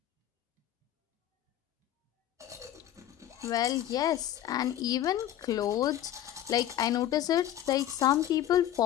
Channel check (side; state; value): right; quieter; 12.1 dB